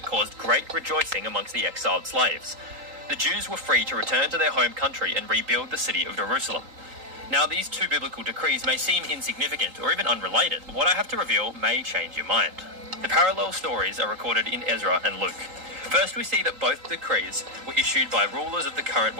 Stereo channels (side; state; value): left; late; 3.8 ms